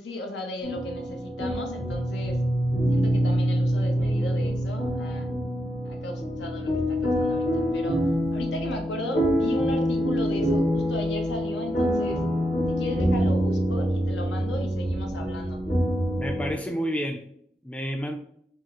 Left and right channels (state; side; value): normal; both; correlation 0.85